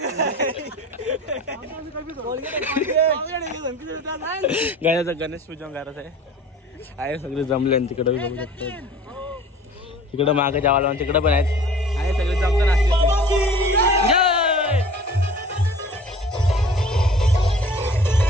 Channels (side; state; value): both; normal; correlation 0.44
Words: गाण्याचं गणेश पूजन करायचं आहे. सगळे जमले तिकडे बघू शकतो. तिकडं मागे जावाला तिकडं पण आहेत. आहे सगळे जमताना